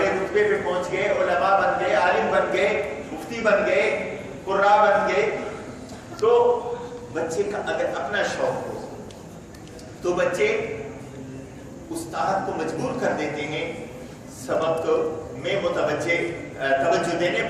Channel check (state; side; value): identical; both; correlation 1.00